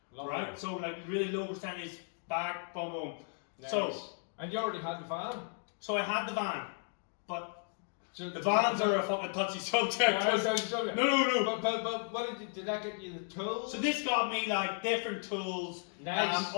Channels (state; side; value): silent; right; 55 dB below the other